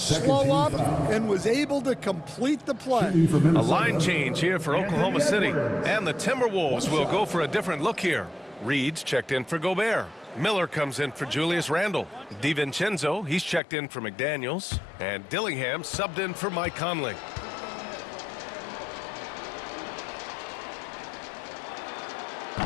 up and was able to complete the play. A line change here for Oklahoma City. And the Timberwolves will go for a different look here. Reed's checked in for Gobert. Miller comes in for Julius Randle. DiVincenzo, he's checked in for McDaniels. And Dillingham subbed in for Mike Conley.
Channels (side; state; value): right; drops out; at 13.6 s